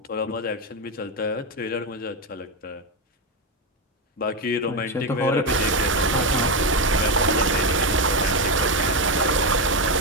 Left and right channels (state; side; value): normal; both; correlation 0.10